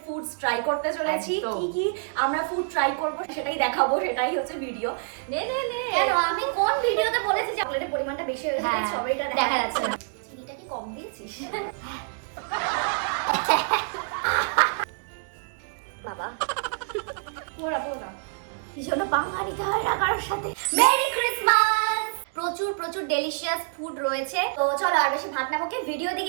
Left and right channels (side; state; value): left; silent; digital silence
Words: ফুডস ট্রাই করতে চলেছি। কি কি আমরা ফুড ট্রাই করব সেটাই দেখাবো, সেটাই হচ্ছে ভিডিও। নে নে নে, কেন আমি কোন ভিডিওতে বলেছি যে চকলেটের পরিমাণটা বেশি হয়ে গেছে? সবাইটা দেখা যাচ্ছে না। চিনিটা কি কম দিয়েছিস বাবা? পুরোটা পুরোটা ভীষণ পাঙ্গা নিতে হয় না কারোর সাথে। Merry Christmas! প্রচুর প্রচুর ডেলিশিয়াস ফুড রয়েছে। তো চলো আর বেশি ভাত না বকে ভিডিও